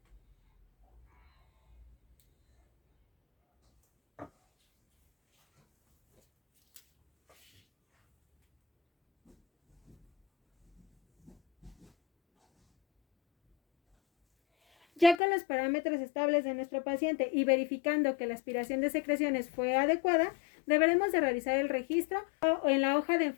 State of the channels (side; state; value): right; drops out; at 15.2 s